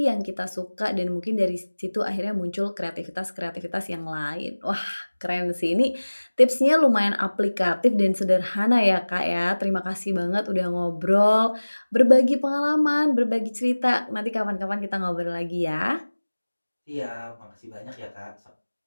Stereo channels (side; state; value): both; inverted; correlation -1.00